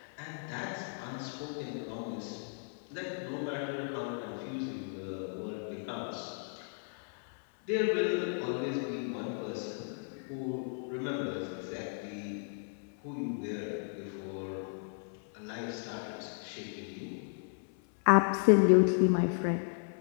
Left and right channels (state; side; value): silent; right; 55 dB below the other